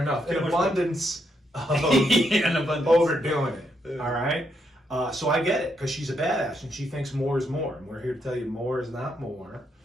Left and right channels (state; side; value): normal; both; correlation 0.78